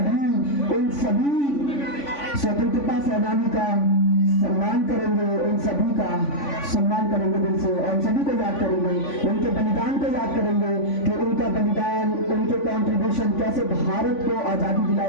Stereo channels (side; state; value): right; late; 3.5 ms